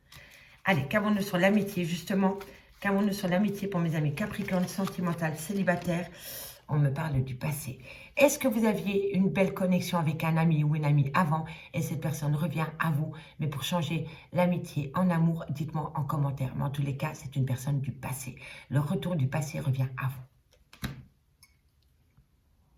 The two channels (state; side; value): identical; both; correlation 1.00